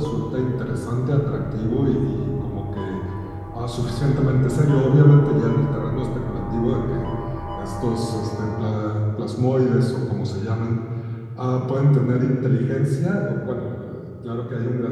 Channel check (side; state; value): both; identical; correlation 1.00